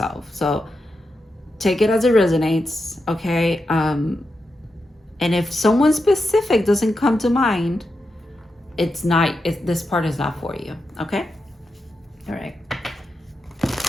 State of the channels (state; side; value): normal; both; correlation 0.88